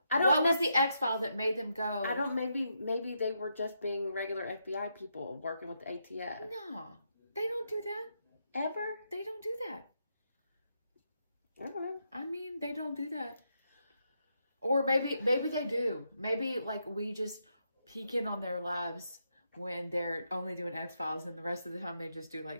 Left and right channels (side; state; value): both; inverted; correlation -0.81